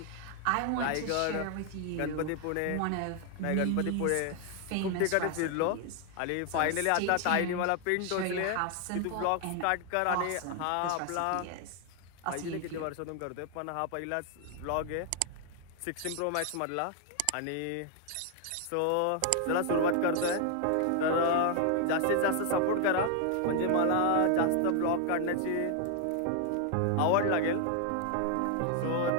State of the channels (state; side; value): different; both; correlation 0.00